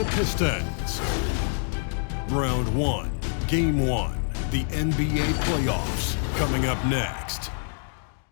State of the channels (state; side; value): silent; right; digital silence